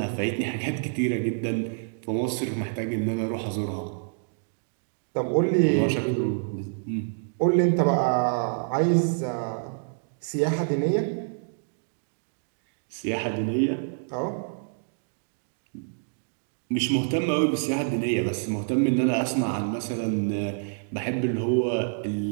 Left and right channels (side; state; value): left; silent; digital silence